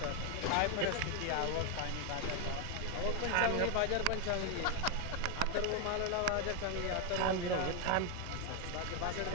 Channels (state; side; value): different; both; correlation 0.01